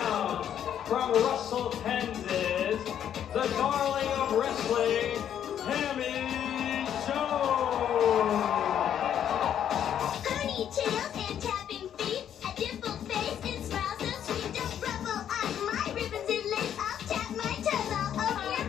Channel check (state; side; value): quieter; right; 9.7 dB